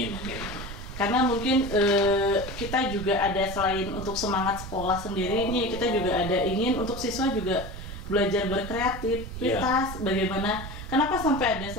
Karena mungkin kita juga ada selain untuk semangat sekolah sendiri ini, kita juga ada ingin untuk siswa juga belajar berkreativitas. Bagaimana, kenapa sampai ada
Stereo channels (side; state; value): right; noise; rumble, 10 dB below the sound